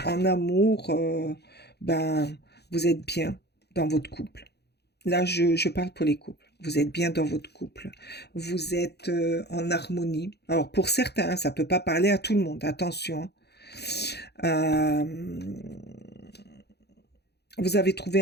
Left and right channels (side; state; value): right; late; 0.48 ms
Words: en amour, ben, vous êtes bien dans votre couple. Là, je parle pour les couples. Vous êtes bien dans votre couple. Vous êtes en harmonie. Alors, pour certains, ça ne peut pas parler à tout le monde. Attention. Vous avez trouvé